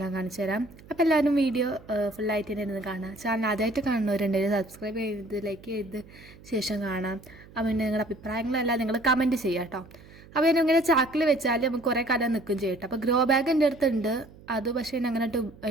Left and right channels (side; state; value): right; noise; hum, 22 dB below the sound